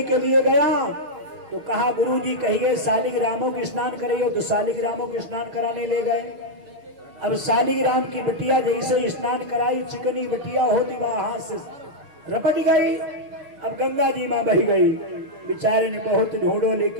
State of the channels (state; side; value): late; left; 6.6 ms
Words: के लिए गया तो कहा गुरु जी कहिए शालिग्रामों के स्नान करिए। तो शालिग्रामों के स्नान कराने ले गए। अब शालिग्राम की बिटिया जैसे स्नान कराई, चिकनी बिटिया होती वहां से रपट गई। अब गंगा जी मां बह गई। बेचारे ने बहुत ढूंढो